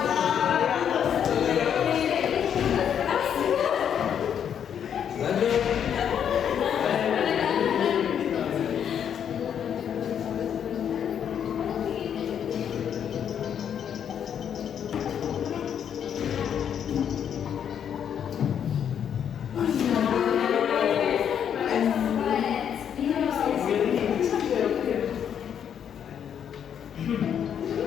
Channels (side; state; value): right; quieter; 8.6 dB